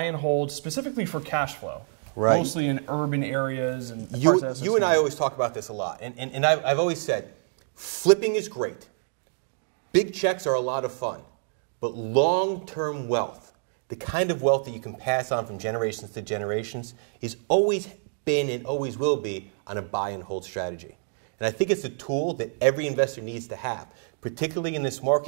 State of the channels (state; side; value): silent; left; digital silence